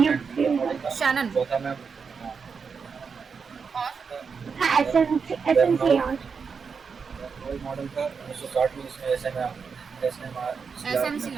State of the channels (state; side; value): quieter; left; 5.7 dB